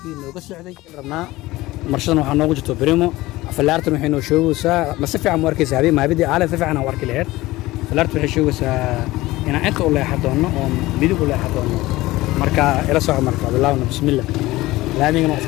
نوجا السعودي ربنا مرشدنا وحنا وجدته بريمو فلارت نحن نشوف سا ما سفع مركز هذه ما بدي على سفع أنا ورك الهير فلارت نشوف سا أنا أنت ولا حدونا أو بدي ولا حدونا مركا إلى صعب مركا بالله بسم الله لا نيجي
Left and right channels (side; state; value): right; quieter; 18.6 dB